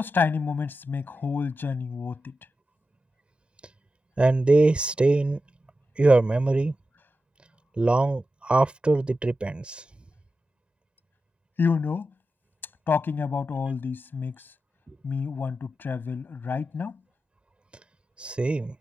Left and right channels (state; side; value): normal; both; correlation 0.91